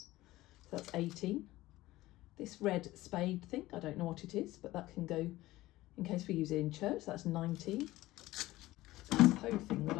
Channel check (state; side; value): quieter; right; 17.4 dB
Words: So that's 18. This red spade thing, I don't know what it is, but that can go in case we use it in church. That's 19. This hoe thing that